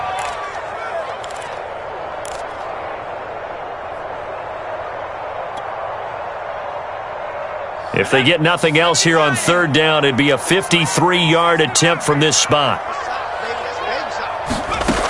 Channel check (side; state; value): both; identical; correlation 1.00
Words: If they get nothing else here on third down, it'd be a 53-yard attempt from this spot.